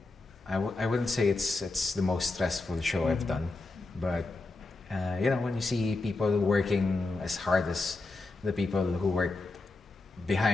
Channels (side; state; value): right; quieter; 3.3 dB